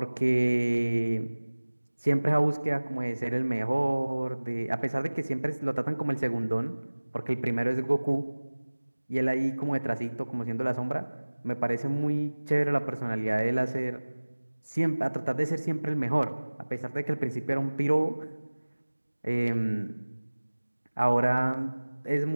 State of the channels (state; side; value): inverted; both; correlation -1.00